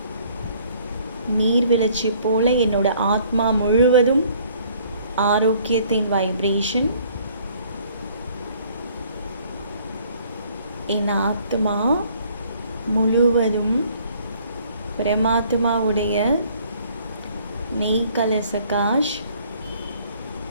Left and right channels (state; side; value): inverted; both; correlation -0.59